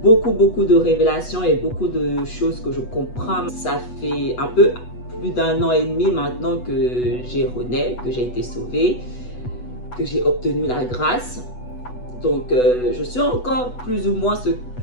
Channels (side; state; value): right; late; 8.1 ms